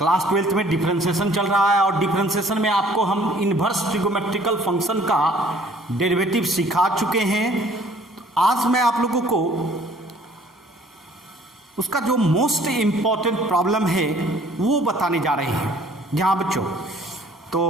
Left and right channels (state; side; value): normal; both; correlation 0.56